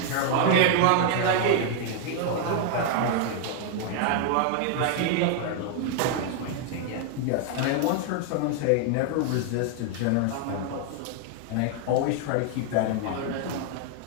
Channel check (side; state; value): both; different; correlation 0.00